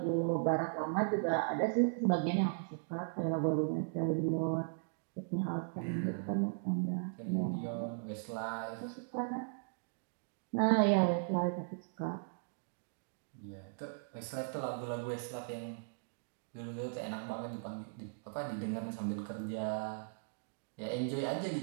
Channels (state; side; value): silent; left; digital silence